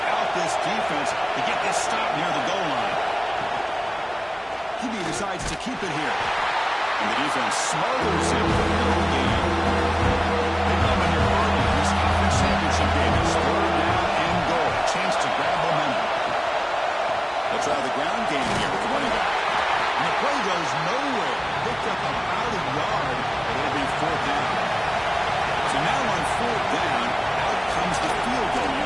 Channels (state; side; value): identical; both; correlation 1.00